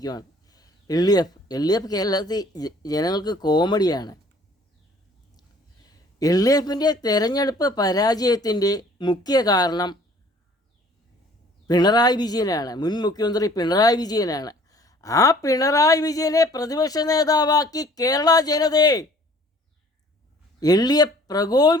LDF കേരളത്തിൽ ജനങ്ങൾക്ക് കോമഡിയാണ്. LDFിൻ്റെ തെരഞ്ഞെടുപ്പ് പരാജയത്തിൻ്റെ മുഖ്യ കാരണം പിണറായി വിജയനാണ്. മുൻ മുഖ്യമന്ത്രി പിണറായി വിജയനാണ്. ആ പിണറായി വിജയനെ പ്രതിപക്ഷ നേതാവാക്കി കേരള ജനതയെ LDF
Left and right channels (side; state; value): both; normal; correlation 0.54